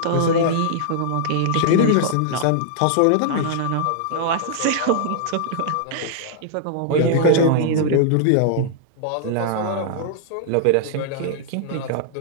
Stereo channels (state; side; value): different; both; correlation -0.01